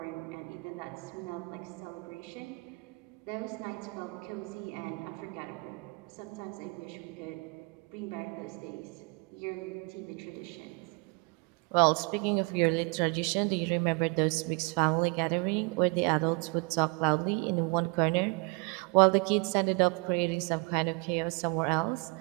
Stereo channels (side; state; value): left; quieter; 31.5 dB